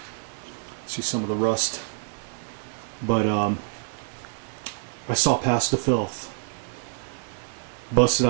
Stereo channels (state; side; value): silent; left; 60 dB below the other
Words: See some of the rust. But I saw past the filth. Busted